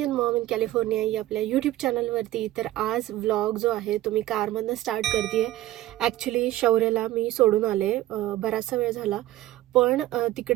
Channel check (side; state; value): left; quieter; 15.3 dB